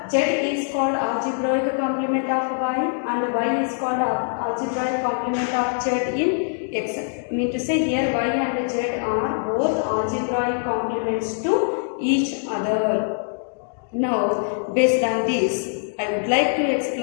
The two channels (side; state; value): right; silent; 63 dB below the other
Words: Z is called algebraic complement of y and y is called algebraic complement of z in X. Mean to say here y and z are both algebraic complements to each other. Now, based on this, I would like to